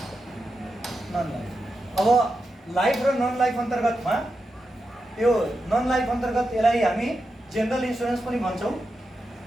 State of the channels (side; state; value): both; normal; correlation 0.88